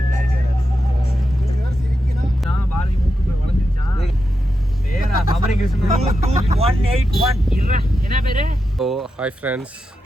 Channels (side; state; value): both; normal; correlation 0.88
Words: ஓ ஹாய் ஃப்ரெண்ட்ஸ்,